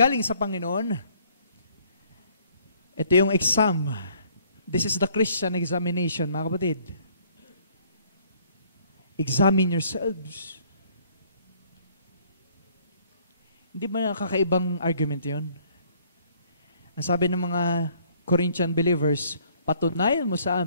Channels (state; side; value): inverted; both; correlation -0.61